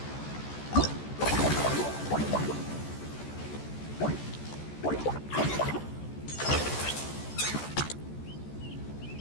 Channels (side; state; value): right; late; 14 ms